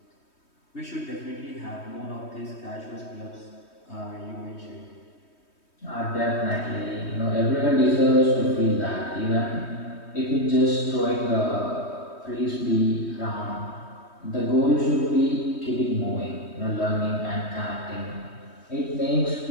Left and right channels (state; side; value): late; right; 3.2 ms